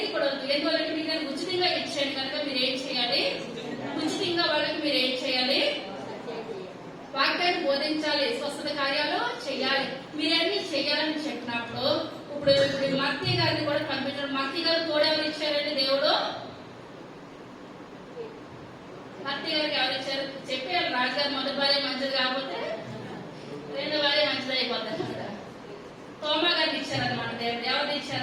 కూడా ఎందువల్లంటే మీకు ఉచితంగా ఇచ్చాను కనుక మీరు ఏం చేయాలి? ఉచితంగా వాళ్ళకి మీరు ఏం చేయాలి? వాక్యాన్ని బోధించాలి, స్వస్థత కార్యాలు చేయాలి. మీరన్నీ చేయాలని చెప్పినప్పుడు ఇప్పుడు మత్తయ్య గారిని కూడా పంపించడం. మత్తయ్య గారు తోడెవరు ఇచ్చారండి? దేవుడు మత్తయ్య గారికి ఎవరు ఇచ్చారు? చెప్పారు రాజుగారు మొదటి భార్య మంచిది కాకపోతే రెండో భార్య మంచిది అయిపోతారు. తోమా గారిని ఇచ్చారనమాట దేవుడు. ఎవరు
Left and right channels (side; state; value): both; identical; correlation 1.00